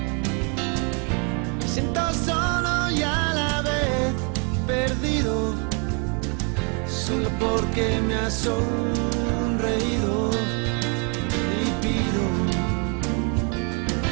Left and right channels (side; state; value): left; quieter; 35.9 dB